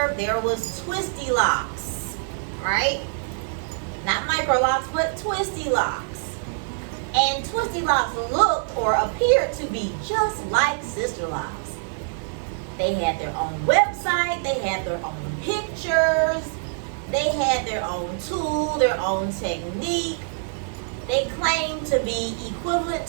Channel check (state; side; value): silent; left; digital silence